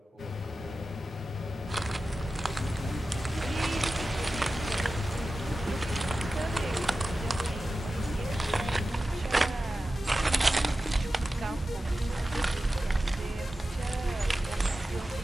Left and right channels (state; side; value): normal; both; correlation 0.94